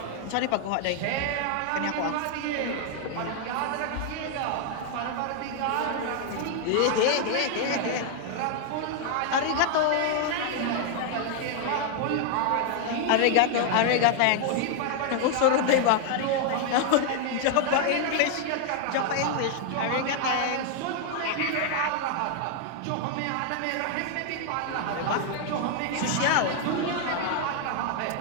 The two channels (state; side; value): different; both; correlation 0.00